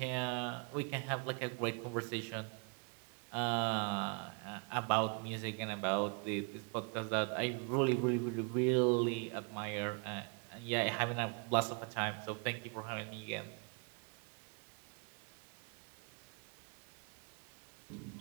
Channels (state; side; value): quieter; left; 36.0 dB